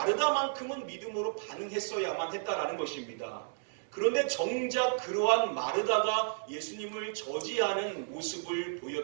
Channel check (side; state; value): left; silent; digital silence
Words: 믿음으로 반응했어야만 했다라는 것입니다. 그런데 정작 그러한 마르다가 예수님을 저지하는 모습을